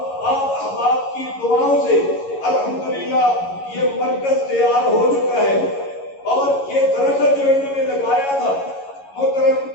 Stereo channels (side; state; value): right; late; 11 ms